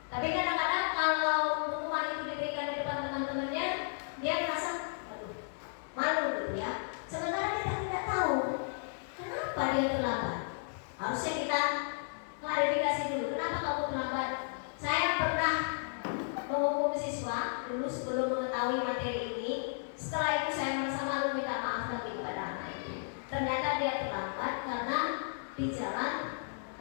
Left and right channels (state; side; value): silent; right; digital silence